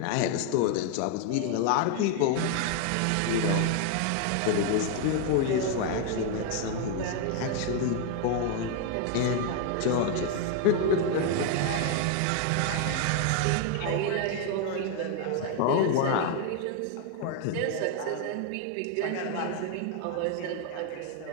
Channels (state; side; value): different; both; correlation 0.01